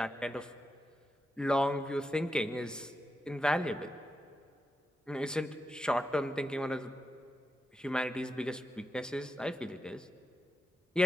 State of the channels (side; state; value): both; normal; correlation 0.87